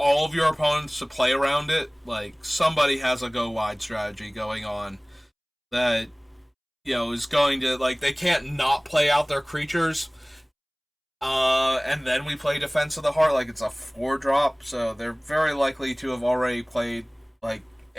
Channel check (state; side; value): identical; both; correlation 1.00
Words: of your opponents to play around it. Like, somebody has a go wide strategy going on that, is going to, like, they can't not play out their creatures. And then we play Defense of the Heart, like it's a 4-drop, so they're very likely to have already played, like,